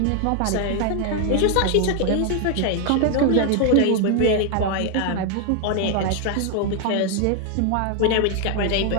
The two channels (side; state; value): both; different; correlation 0.00